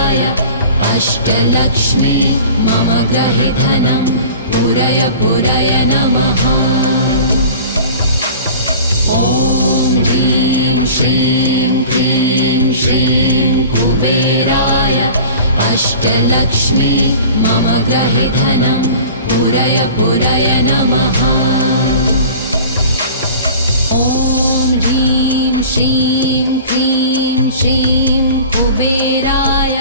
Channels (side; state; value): both; inverted; correlation -0.41